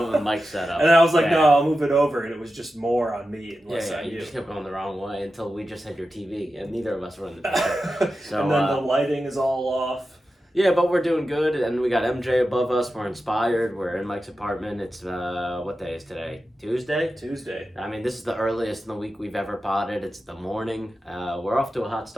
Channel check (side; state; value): both; normal; correlation 0.92